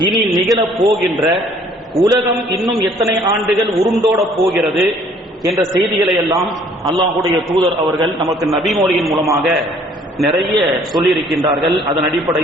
இனி நிகழப் போகின்ற, உலகம் இன்னும் எத்தனை ஆண்டுகள் உருண்டோட போகிறது என்ற செய்திகளை எல்லாம் அல்லாஹ்வுடைய தூதர் அவர்கள் நமக்கு நபிமொழியின் மூலமாக நிறைய சொல்லியிருக்கின்றார்கள். அதன்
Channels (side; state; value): both; normal; correlation 0.58